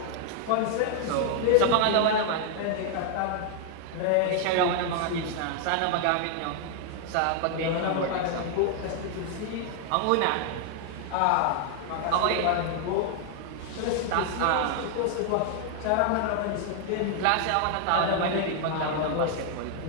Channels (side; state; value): both; different; correlation 0.00